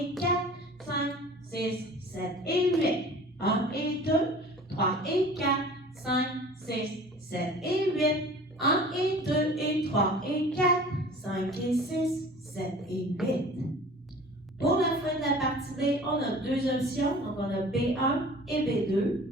4, 5, 6, 7 et 8. 1 et 2, 3 et 4, 5, 6, 7 et 8. 1 et 2 et 3 et 4, 5 et 6, 7 et 8. Pour la fin de la partie B, on a deux options. Donc, on a B1 et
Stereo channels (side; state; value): both; normal; correlation 0.44